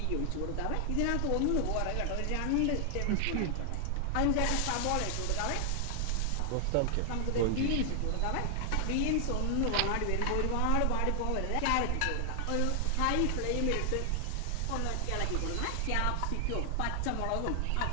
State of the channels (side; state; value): both; different; correlation 0.00